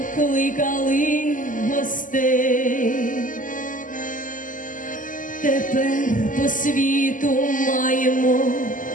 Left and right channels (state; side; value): late; right; 0.38 ms